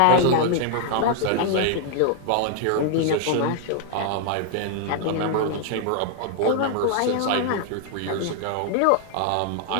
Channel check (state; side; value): different; both; correlation 0.00